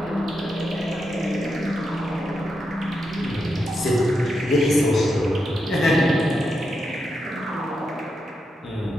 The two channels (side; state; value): both; normal; correlation 0.85